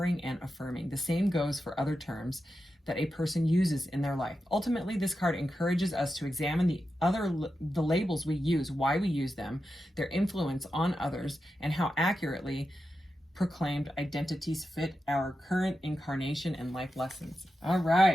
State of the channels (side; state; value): both; normal; correlation 0.90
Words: and affirming. The same goes for other terms that a person uses in their life. Ultimately, this card encourages us to examine the labels we use, why we use them, their influence on others, and how accurately proclaimed identities fit our current incarnation and life lessons. All